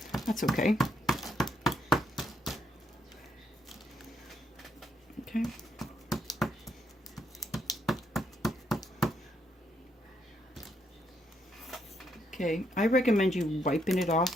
that's okay. Okay. Okay, I recommend you wiping it off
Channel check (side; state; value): both; normal; correlation 0.76